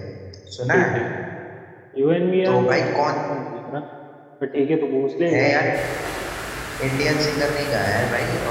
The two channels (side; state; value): both; identical; correlation 1.00